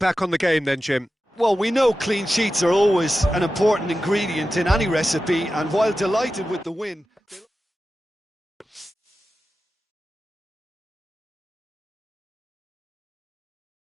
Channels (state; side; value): normal; both; correlation 0.93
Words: on the game then, Jim? Well, we know clean sheets are always an important ingredient in any recipe, and while delighted with the win...